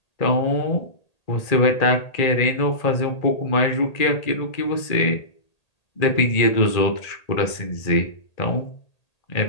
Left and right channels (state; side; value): late; right; 1.8 ms